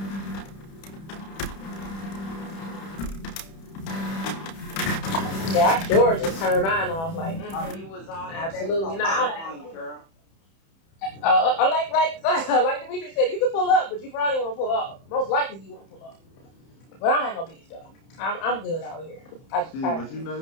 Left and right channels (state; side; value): late; right; 31 ms